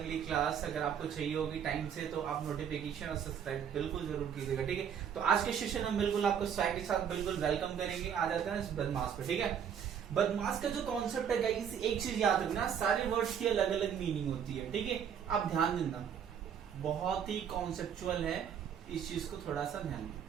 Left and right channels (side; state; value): left; quieter; 8.1 dB